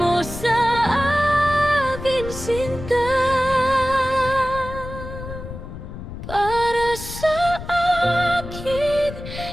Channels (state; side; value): noise; left; rumble, 10 dB below the sound